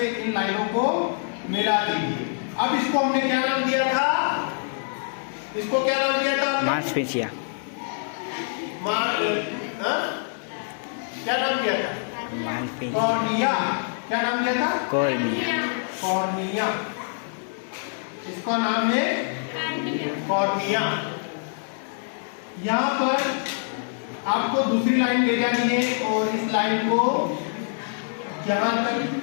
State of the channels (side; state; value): right; silent; digital silence